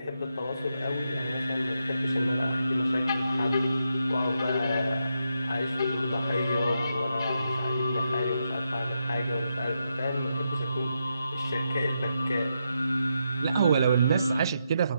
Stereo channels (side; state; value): both; inverted; correlation -0.83